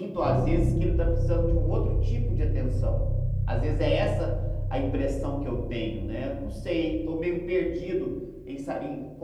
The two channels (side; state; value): both; identical; correlation 1.00